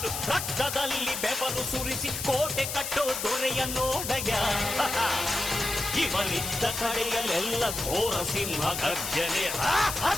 ರಕ್ತದಲ್ಲಿ ಬೆವರು ಸುರಿಸಿ ಕೋಟೆ ಕಟ್ಟೋ ದೊರೆಯ ನೋಡಯ. ಇವನಿದ್ದ ಕಡೆಯಲ್ಲೆಲ್ಲ ಘೋರ ಸಿಂಹ ಗರ್ಜನೆ,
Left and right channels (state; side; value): noise; left; hiss, 4 dB below the sound